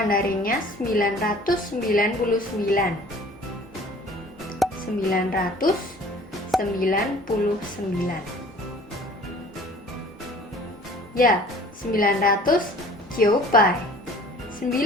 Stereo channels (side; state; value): both; normal; correlation 0.49